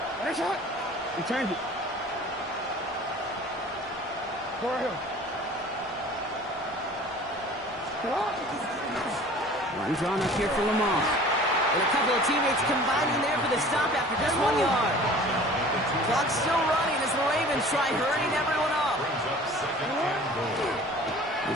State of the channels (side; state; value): both; normal; correlation 0.45